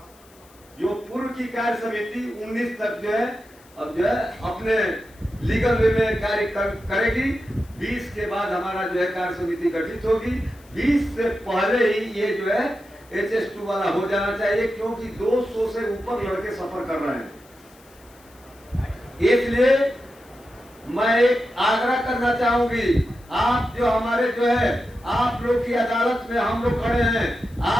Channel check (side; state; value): left; noise; hiss, 28 dB below the sound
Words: जो पूर्व की कार्य समिति 19 तक जो है अब जो है अपने लीगल वे में कार्य करेगी। 20 के बाद हमारा जो है कार्य समिति गठित होगी। 20 से पहले ही ये जो है HS2 वाला हो जाना चाहिए, क्योंकि 200 से ऊपर लड़के सफर कर रहे हैं। इसलिए मैं एक आग्रह करना चाहूंगी, आप जो हमारे जो है आप लोग की अदालत में हम लोग खड़े हैं,